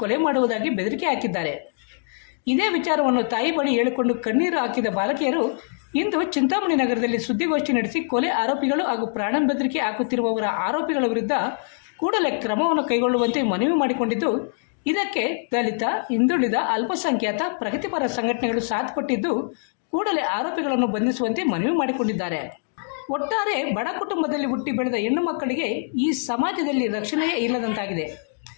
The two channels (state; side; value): silent; right; digital silence